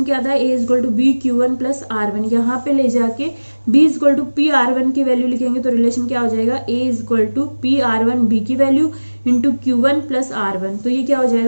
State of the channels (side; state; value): both; inverted; correlation -1.00